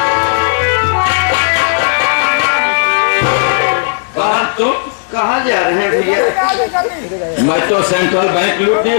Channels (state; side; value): silent; right; digital silence